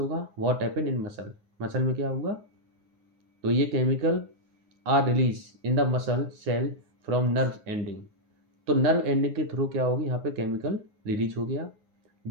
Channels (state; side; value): late; left; 9.6 ms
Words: What happen in muscle, muscle में क्या हुआ? तो ये chemical are release in the muscle cell from nerve ending. तो नर्व एंडिंग के थ्रू क्या होगी? यहाँ पे केमिकल रिलीज हो गया,